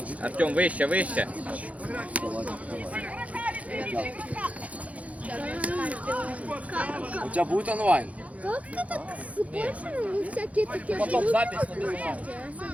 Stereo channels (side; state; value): left; late; 0.067 ms